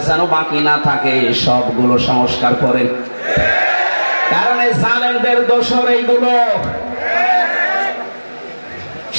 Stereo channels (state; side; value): inverted; both; correlation -1.00